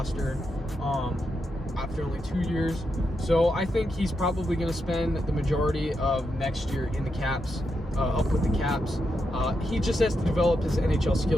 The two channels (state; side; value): normal; both; correlation 0.85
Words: after only 2 years. So I think he's probably going to spend the majority of next year in the Caps, up with the Caps. He just has to develop his NHL